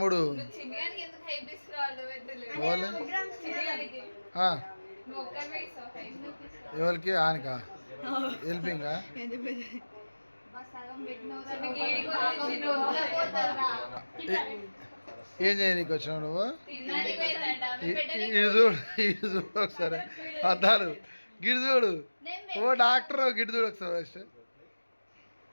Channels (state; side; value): inverted; both; correlation -1.00